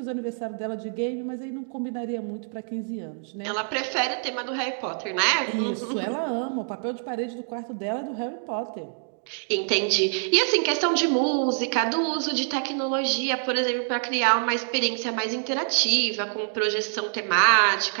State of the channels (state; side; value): silent; left; 61 dB below the other